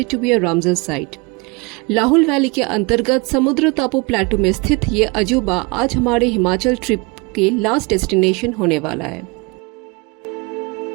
to be a Ramsar site. Lahaul valley के अंतर्गत समुद्र टापू प्लेटू में स्थित ये अजूबा आज हमारे हिमाचल ट्रिप के लास्ट डेस्टिनेशन होने वाला है।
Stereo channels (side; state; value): left; quieter; 28.0 dB